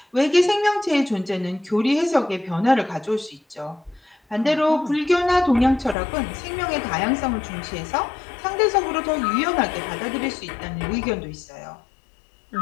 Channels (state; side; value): drops out; right; at 6.0 s